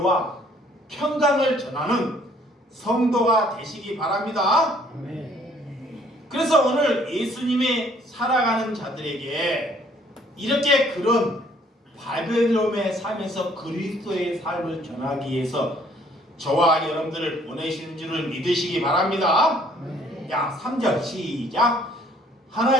평강을 전하는 성도가 되시기 바랍니다. 그래서 오늘 예수님이 살아가는 자들에게 이렇게 그런 바벨론의 삶에서 그리스도의 삶을 전하기 위해서 저와 여러분들을 보내시는 줄을 믿으시기 바랍니다. 야, 3절 시작.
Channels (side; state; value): both; normal; correlation 0.61